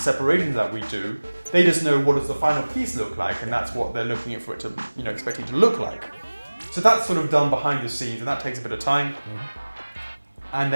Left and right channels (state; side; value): inverted; both; correlation -1.00